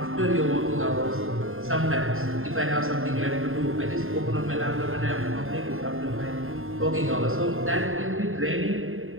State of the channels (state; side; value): late; left; 0.61 ms